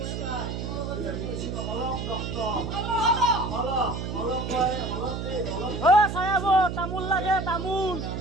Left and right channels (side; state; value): right; noise; hum, 4 dB below the sound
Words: Oh, saya bu, tamul lagi, tamul.